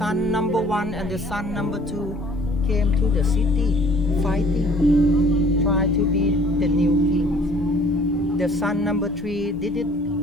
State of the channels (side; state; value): both; normal; correlation 0.54